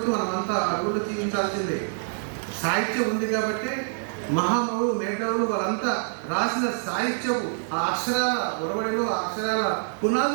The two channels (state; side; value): silent; left; digital silence